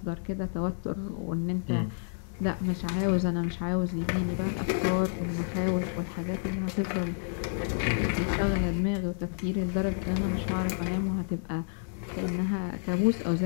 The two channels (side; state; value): right; silent; digital silence